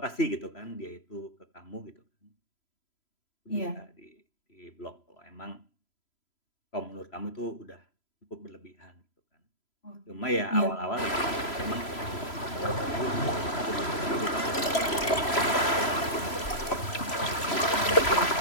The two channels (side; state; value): right; late; 3.0 ms